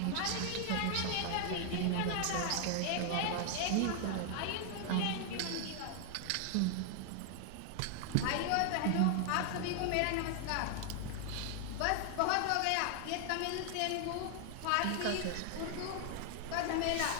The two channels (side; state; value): both; different; correlation 0.00